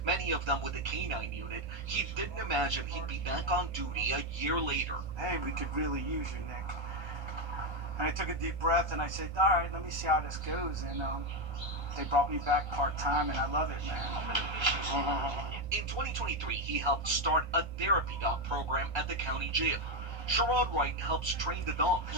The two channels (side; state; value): left; late; 1.3 ms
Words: many of them with the K-9 unit, he didn't imagine he'd be back on duty a year later. Hey, we could really use you, Nick. And I took a deep breath and I said, all right, let me see how this goes. And they brought me back part-time, and I love it, man. In 2023, he helped start a therapy dog program at the county jail. Sherrod Wright helps train the dogs.